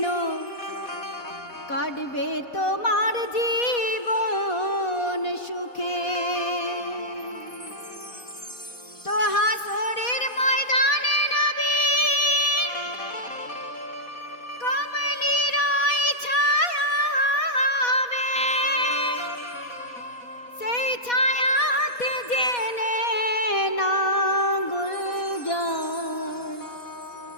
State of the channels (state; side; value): late; right; 4.1 ms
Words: কাটবে তোমার জীবন সুখে। তো হাসরের ময়দানে নবীর কমলির ওই ছায়া হবে, সেই ছায়াতে জেনে না গুলজার